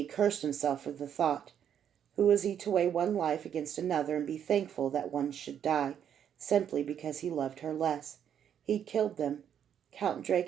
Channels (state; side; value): quieter; left; 9.0 dB